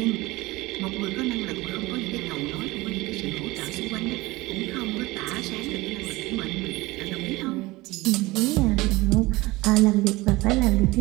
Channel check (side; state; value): left; quieter; 20.7 dB